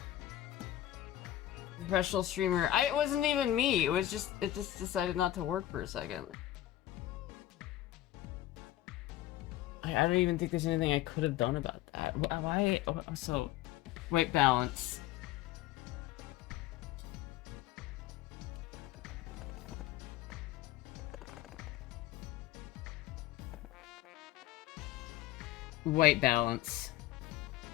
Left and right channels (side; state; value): right; quieter; 13.8 dB